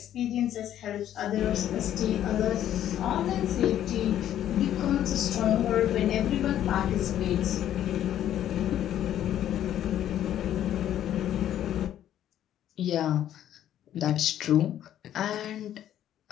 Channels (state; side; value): quieter; right; 11.3 dB